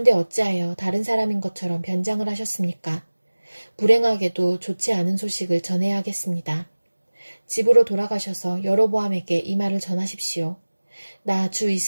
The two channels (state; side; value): inverted; both; correlation -1.00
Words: 어찌하여 다른 사람인 것처럼 변장을 하셨습니까? 불행하게도 좋지 않은 소식을 전해야 하겠습니다. 집으로 돌아가셔서 여로보암에게 이 말을 전하십시오. 나 주